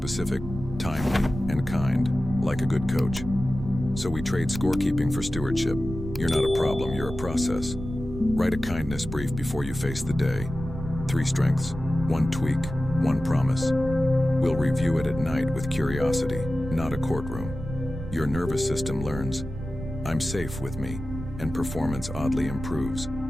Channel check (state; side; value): noise; right; rumble, 9 dB below the sound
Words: timely, and kind, like a good coach. So we trade scorekeeping for stewardship. You're not a problem, you're a process. Write a kindness brief before you face the day. 3 strengths, 1 tweak, 1 promise. We'll review it at night with curiosity, not a courtroom. Your nervous system learns, I'm safe with me, and performance oddly improves.